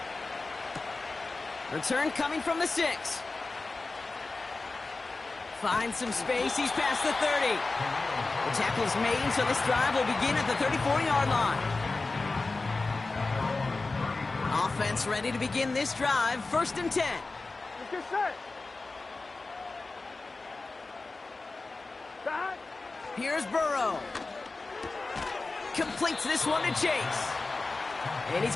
Return coming from the 6. Finds some space. He's past the 30. The tackle's made, so this drive will begin at the 34-yard line. Offense ready to begin this drive. 1st and 10. Let's get set. Back. Here's Burrow. Completes this one to Chase. And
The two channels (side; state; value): right; quieter; 3.6 dB